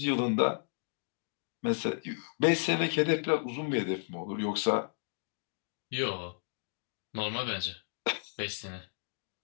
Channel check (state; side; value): silent; right; digital silence